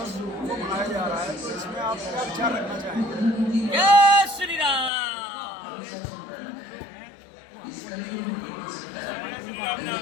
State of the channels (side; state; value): right; drops out; at 4.9 s